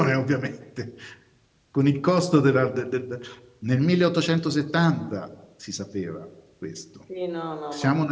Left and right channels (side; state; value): both; identical; correlation 1.00